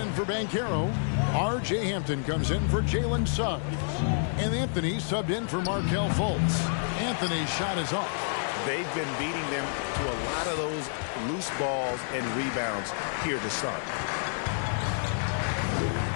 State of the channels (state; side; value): silent; right; 59 dB below the other